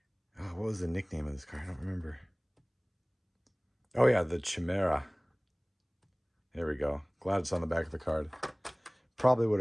what was the nickname of this car? I don't remember. Oh yeah, the Chimera. There we go. Glad it's on the back of the card. Probably would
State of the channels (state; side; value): identical; both; correlation 1.00